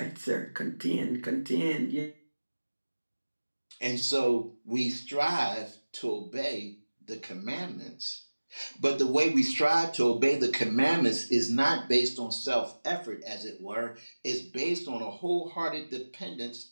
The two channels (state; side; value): inverted; both; correlation -1.00